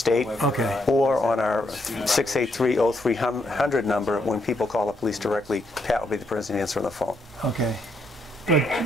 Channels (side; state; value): both; normal; correlation 0.76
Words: Okay. Or on our 683-0300 number, when people call the police directly, Pat will be the person answering the phone. Okay. But